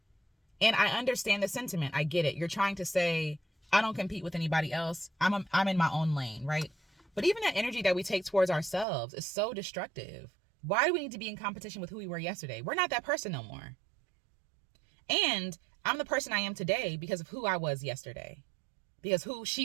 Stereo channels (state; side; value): drops out; left; at 8.8 s